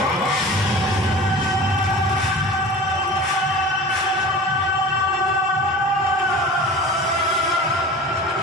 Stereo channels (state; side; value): normal; both; correlation 0.37